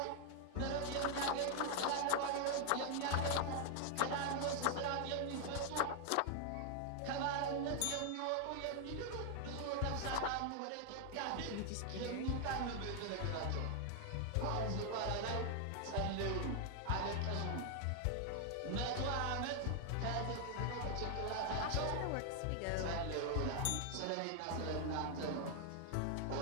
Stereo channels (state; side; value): different; both; correlation 0.00